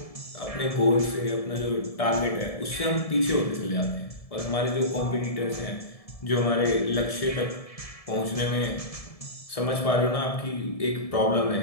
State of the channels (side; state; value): right; late; 1.7 ms